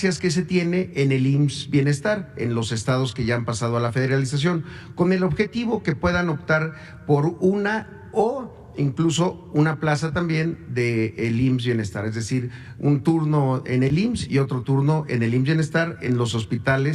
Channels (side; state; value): both; identical; correlation 1.00